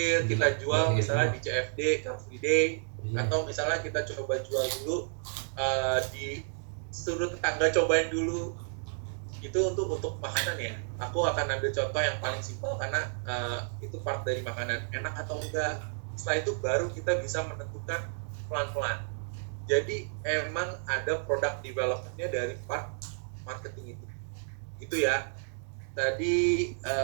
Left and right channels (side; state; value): left; silent; digital silence